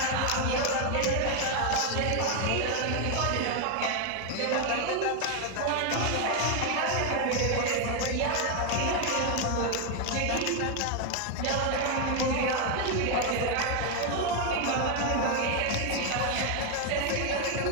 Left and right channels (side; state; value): both; different; correlation 0.01